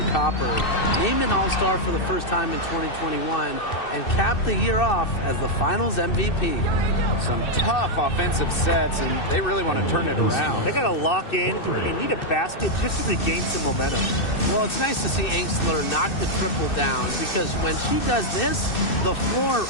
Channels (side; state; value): right; late; 2.6 ms